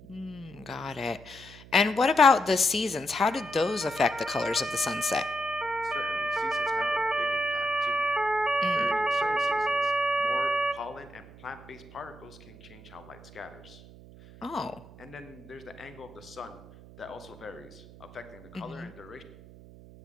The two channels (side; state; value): right; noise; hum, 19 dB below the sound